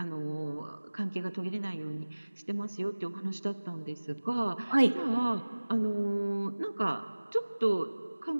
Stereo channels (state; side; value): inverted; both; correlation -1.00